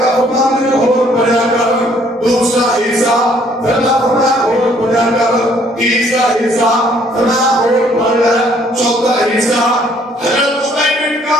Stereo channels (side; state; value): both; normal; correlation 0.63